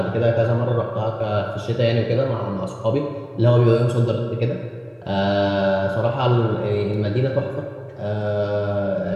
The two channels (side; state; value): both; identical; correlation 1.00